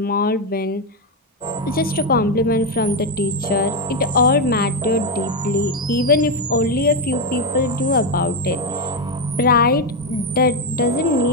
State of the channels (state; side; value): normal; both; correlation 0.06